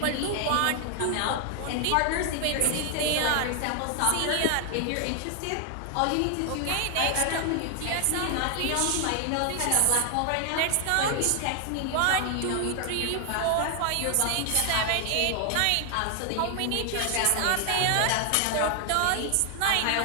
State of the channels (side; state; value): both; different; correlation 0.00